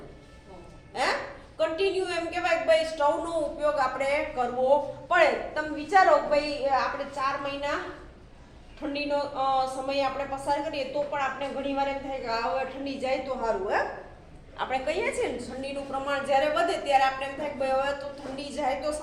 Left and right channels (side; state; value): both; identical; correlation 1.00